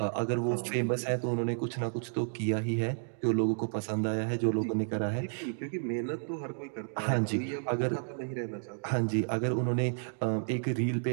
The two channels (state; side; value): silent; left; digital silence